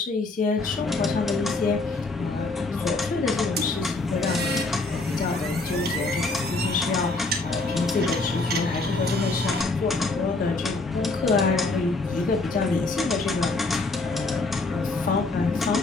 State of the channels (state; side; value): quieter; right; 3.4 dB